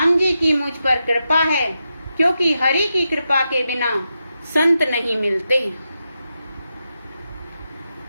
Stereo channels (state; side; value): inverted; both; correlation -0.87